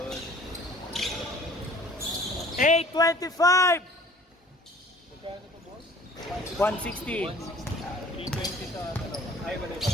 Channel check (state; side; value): normal; both; correlation 0.50